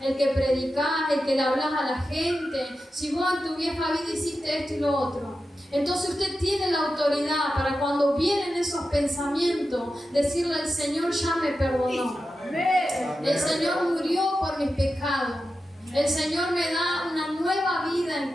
que predicás, el que le hablas a la gente. Si vos en tu vieja vida hiciste esto y lo otro. Entonces usted tiene la autoridad para cuando vienen esos pensamientos, decirle al Señor, ya me perdonó. El Señor murió por mis pecados. El Señor me da una nueva vida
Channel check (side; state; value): both; normal; correlation 0.91